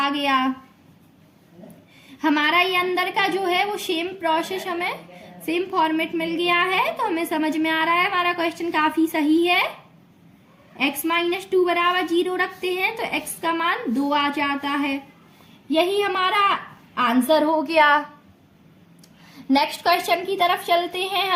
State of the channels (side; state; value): both; identical; correlation 1.00